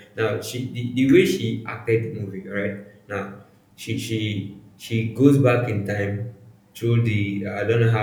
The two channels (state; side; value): identical; both; correlation 1.00